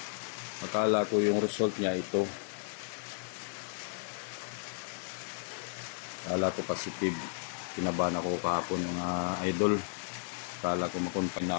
akala ko yung result niya ito. Akala ko positive. Kinabahan ako kahapon mga idol. Akala ko makonfine na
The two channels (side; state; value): right; silent; digital silence